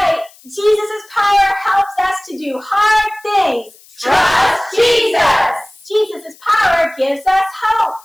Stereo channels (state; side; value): noise; left; hiss, 26 dB below the sound